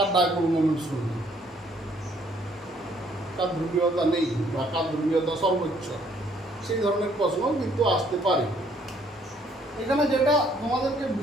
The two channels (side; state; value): both; normal; correlation 0.65